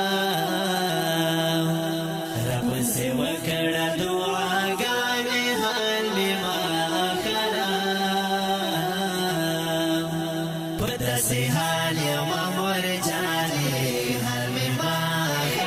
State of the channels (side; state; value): both; identical; correlation 1.00